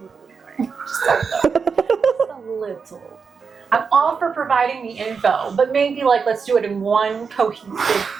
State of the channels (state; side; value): quieter; left; 5.6 dB